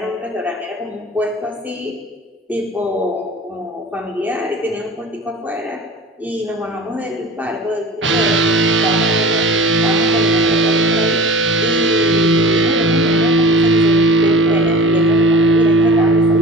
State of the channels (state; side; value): normal; both; correlation 0.39